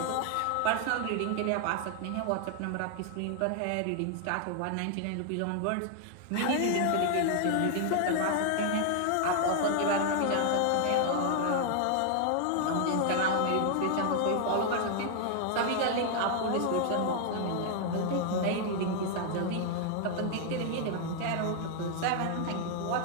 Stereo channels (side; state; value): both; different; correlation 0.00